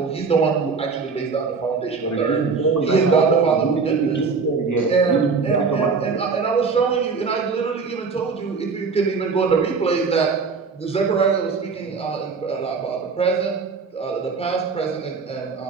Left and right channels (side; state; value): left; quieter; 4.9 dB